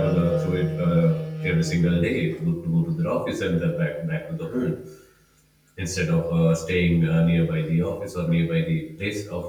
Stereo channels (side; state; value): both; identical; correlation 1.00